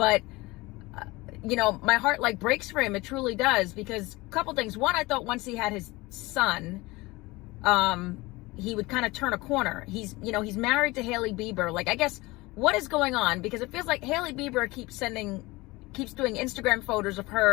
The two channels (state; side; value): quieter; right; 21.8 dB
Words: my heart breaks for him. It truly does, because a couple things. One, I thought once he had his son, he would kind of turn a corner. He's married to Hailey Bieber. I guess what is going on? Because it feels like Hailey Bieber keeps doing Instagram photos of